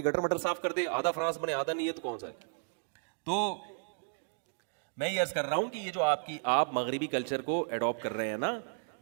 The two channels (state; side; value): silent; left; digital silence